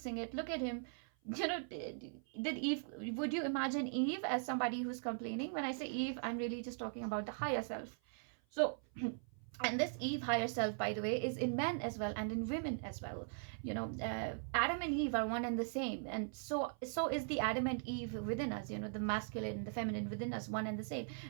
it. Look at him. Did Eve, would you imagine Eve as somebody who's complaining? When I say Eve, I'm really just talking about the higher self. So and this Eve higher self, by the way, is in men as well and in women as well. Adam and Eve are one and the same, and so is the Adam and Eve within us. The masculine, the feminine within us, one and the same.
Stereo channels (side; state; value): left; silent; 51 dB below the other